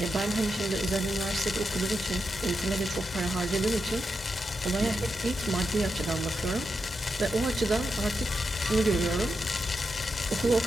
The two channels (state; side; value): normal; both; correlation 0.86